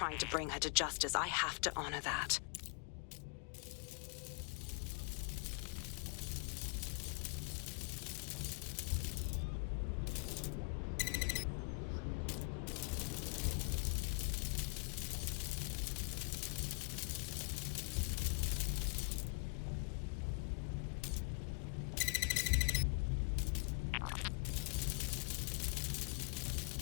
to bring her to justice. I have to honor that.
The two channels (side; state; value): right; quieter; 36.8 dB